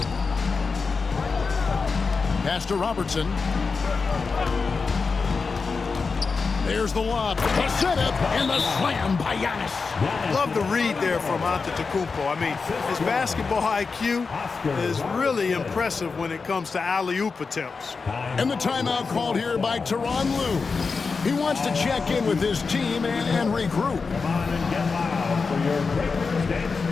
Pass to Robertson. There's the lob. The setup and the slam by Giannis. Love the read there from Antetokounmpo. I mean, his basketball IQ is really impressive when it comes to alley-oop attempts. And the timeout called here by Tyronn Lue. He wants to check in with his team and regroup. Come on and get loud for your Breakers Dance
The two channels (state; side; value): quieter; right; 4.7 dB